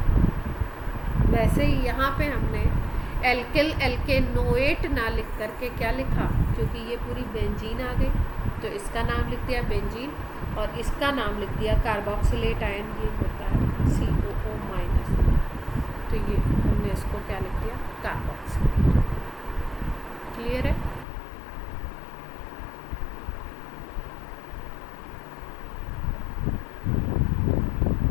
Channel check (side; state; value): right; drops out; at 21.1 s